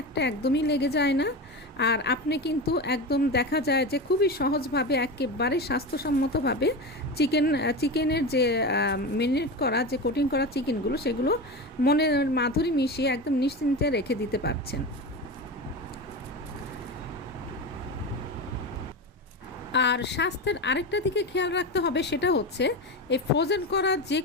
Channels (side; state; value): both; normal; correlation 0.23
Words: একটা একদমই লেগে যায় না। আর আপনি কিন্তু একদম দেখা যায় যে খুবই সহজভাবে একেবারে স্বাস্থ্যসম্মতভাবে চিকেনের যে মেরিনেট করা যে কোটিং করা চিকেনগুলো সেগুলো মনের মাধুরী মিশিয়ে একদম নিশ্চিন্তে রেখে দিতে পারছেন। আর স্বাস্থ্যের আরেকটা দিকে খেয়াল রাখতে হবে, সেটা হচ্ছে এই ফ্রোজেন করা যে